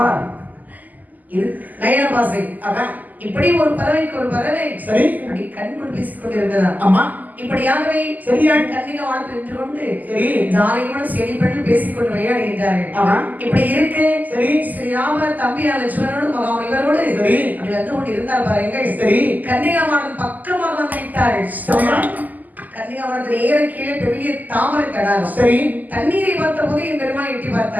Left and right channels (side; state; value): left; late; 0.082 ms